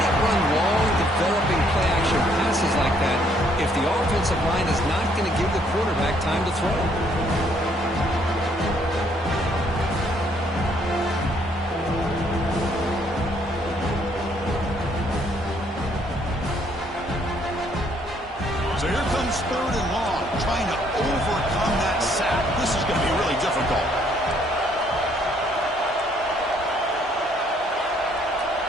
run long, developing play action passes like that if the offensive line is not going to give the quarterback time to throw. So here comes 3rd and long, trying to overcome that sack. This is going to be really difficult.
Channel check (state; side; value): normal; both; correlation 0.67